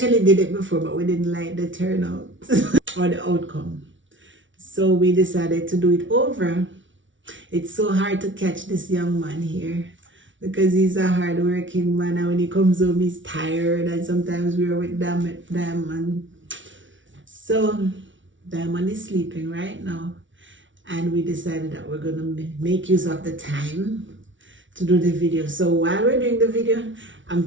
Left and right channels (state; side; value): late; left; 0.56 ms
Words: did it before, but we didn't like the turnout or the outcome, so we decided to do it over. It's so hard to catch this young man here because he's a hard-working man, and when he comes home he's tired, and sometimes we're with Diamond. So Diamond is sleeping right now, and we decided that we're gonna make use of the time to do the video. So while we're doing the video, I'm